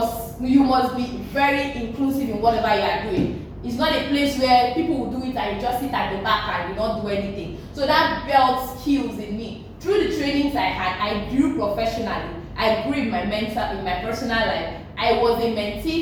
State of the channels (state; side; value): identical; both; correlation 1.00